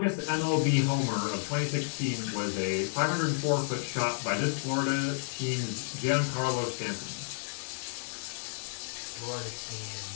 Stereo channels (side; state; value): right; silent; digital silence